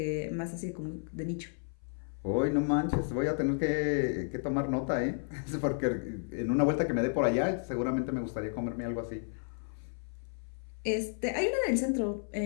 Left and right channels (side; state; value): right; silent; 56 dB below the other